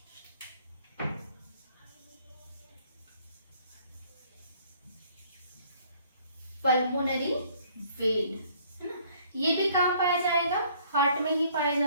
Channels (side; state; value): both; inverted; correlation -0.59